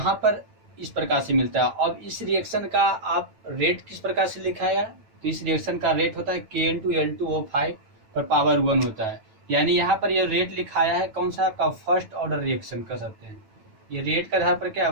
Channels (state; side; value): late; left; 9.1 ms